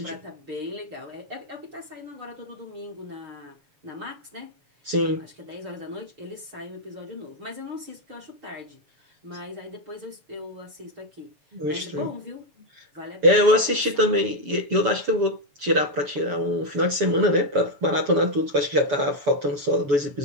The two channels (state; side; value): late; left; 7.0 ms